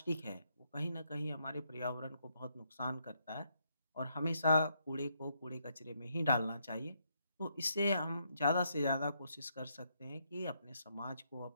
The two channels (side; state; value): both; inverted; correlation -0.75